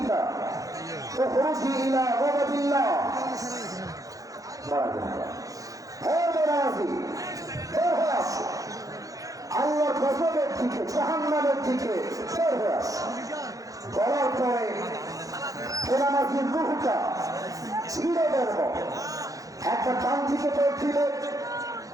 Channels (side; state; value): left; late; 0.17 ms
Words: উখরুজি ইলা গাদাবিল্লাহ। হে বেনামাজি, বের হয়ে আসো, আল্লাহর গজবের দিকে, জাহান্নামের দিকে বের হয়ে আসো। বলার পরে বেনামাজির রূহটা ছিঁড়ে বেরবো। একবার ডান দিকে দৌড় দিলে,